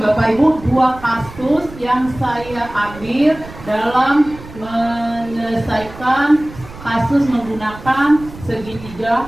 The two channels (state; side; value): noise; right; rumble, 16 dB below the sound